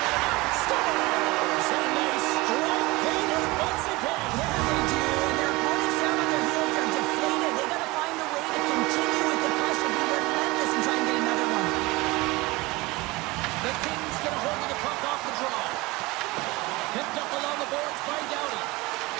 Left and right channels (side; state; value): left; quieter; 22.4 dB